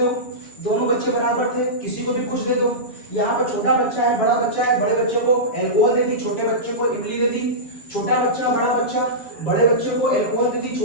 दोनों बच्चे बराबर थे किसी को भी कुछ दे दो। यहाँ पर छोटा बच्चा है, बड़ा बच्चा है, बड़े बच्चे को अल्कोहल दे दी, छोटे बच्चे को इमली दे दी, छोटा बच्चा बड़ा बच्चा, बड़े बच्चे को अल्कोहल दे दी,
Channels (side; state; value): right; late; 7.1 ms